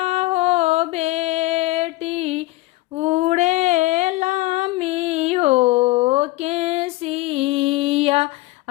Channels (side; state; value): right; quieter; 19.8 dB